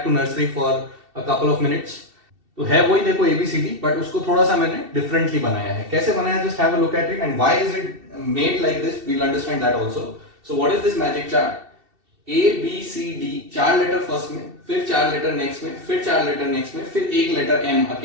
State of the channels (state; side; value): late; left; 2.7 ms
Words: to nursery for a couple of minutes. तो है वही देखो ABCD, but उसको थोड़ा सा मैंने differently बनाया है। कैसे बनाया? Just have a look at it and why is it made like this? We'll understand that also. So what is this magic chart? A B C D, 4 letter first में, फिर 4 लेटर नेक्स्ट में, फिर 4 letter next में, फिर एक letter M